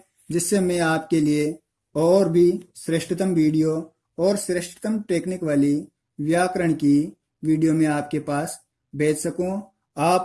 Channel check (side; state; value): both; identical; correlation 1.00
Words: जिससे मैं आपके लिए और भी श्रेष्ठतम वीडियो और श्रेष्ठतम टेक्निक वाली व्याकरण की वीडियो में आपके पास भेज सकूं।